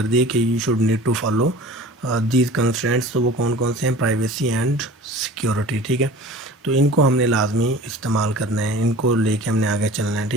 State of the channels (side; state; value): both; normal; correlation 0.42